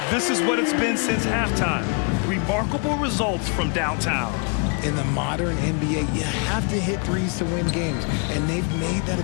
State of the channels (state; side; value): quieter; right; 36.4 dB